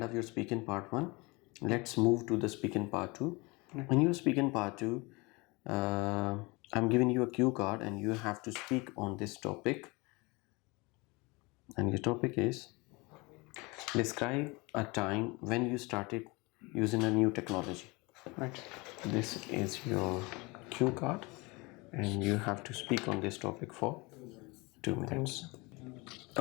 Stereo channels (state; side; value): quieter; right; 25.8 dB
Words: of your speaking part 1. Let's move to the speaking part 2. In your speaking part 2, I'm giving you a cue card and you have to speak on this topic. And your topic is describe a time when you started using a new technology. Right. This is your cue card and you have to speak on this topic for 2 minutes.